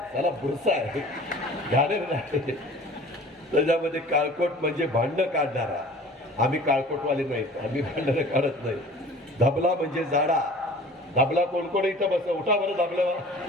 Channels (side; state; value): both; normal; correlation 0.45